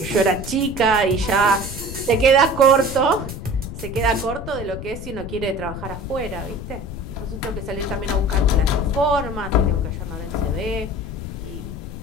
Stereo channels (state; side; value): noise; left; rumble, 9 dB below the sound